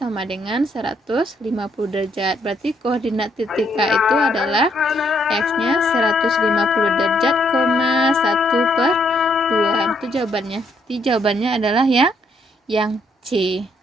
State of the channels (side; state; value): both; normal; correlation 0.71